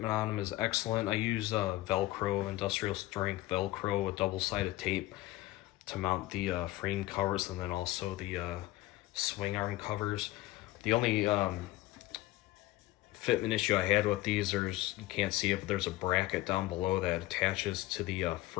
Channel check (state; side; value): quieter; right; 17.3 dB